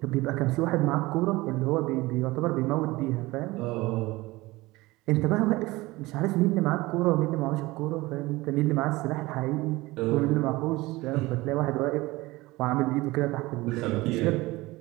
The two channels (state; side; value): quieter; left; 20.4 dB